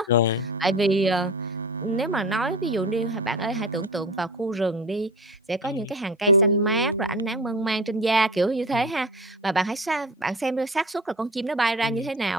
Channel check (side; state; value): both; normal; correlation 0.33